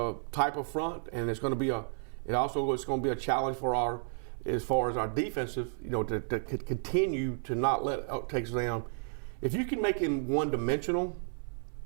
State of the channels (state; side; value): silent; left; 56 dB below the other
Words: type of front, and it's going to be a challenge for as far as our defensive, to continue to not let Texas A&M. If you can make him one-dimensional,